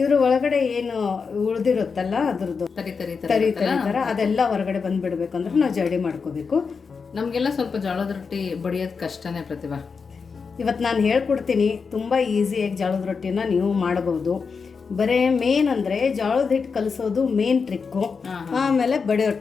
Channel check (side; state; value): right; quieter; 5.3 dB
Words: ಒಳಗಡೆ ಏನು ಉಳ್ದಿರುತ್ತಲ್ಲ ಅದ್ರದ್ದು ತರಿ ತರಿ ತರ ಅದೆಲ್ಲ ಹೊರಗಡೆ ಬಂದ್ಬಿಡ್ಬೇಕು ಅಂದ್ರೆ ನಾವು ಜರ್ಡಿ ಮಾಡ್ಕೋಬೇಕು. ನಮ್ಗೆಲ್ಲ ಸ್ವಲ್ಪ ಜೋಳದ ರೊಟ್ಟಿ ಬಡಿಯೋದು ಕಷ್ಟನೇ ಪ್ರತಿಭಾ. ಇವತ್ತು ನಾನು ಹೇಳ್ಕೊಡ್ತೀನಿ, ತುಂಬ ಈಸಿಯಾಗಿ ಜೋಳದ ರೊಟ್ಟಿನ ನೀವು ಮಾಡಬಹುದು. ಬರೀ ಮೇನ್ ಅಂದರೆ ಜೋಳದ ಹಿಟ್ಟು ಕಲಿಸೋದು ಮೇನ್ ಟ್ರಿಕ್ಕು, ಆಮೇಲೆ ಬಡಿಯೋ